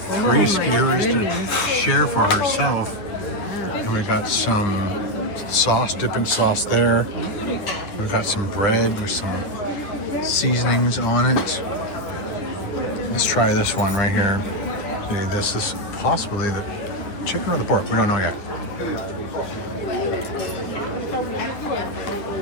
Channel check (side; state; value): right; late; 9.6 ms